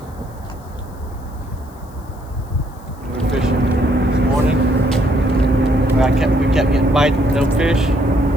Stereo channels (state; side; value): noise; left; hiss, 28 dB below the sound